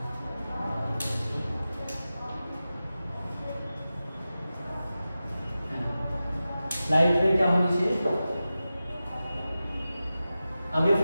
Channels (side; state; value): both; inverted; correlation -0.94